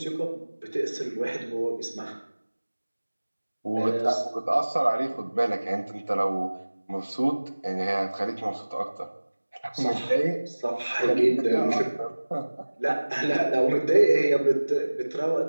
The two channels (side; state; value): both; inverted; correlation -1.00